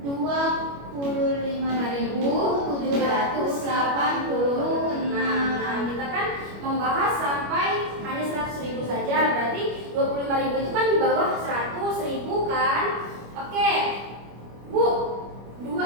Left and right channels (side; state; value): left; late; 25 ms